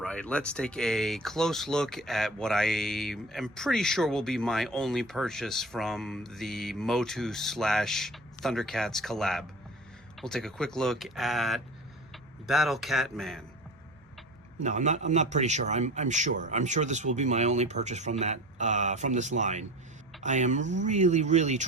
right, let's take a close look at what I am pretty sure will be my only purchase from the MOTU / Thundercats collab. We'll take a quick look at Battle Cat Man. No, I'm not pretty sure. I'm sure this will be my only purchase from that from this line. I am really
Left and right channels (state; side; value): normal; both; correlation 0.36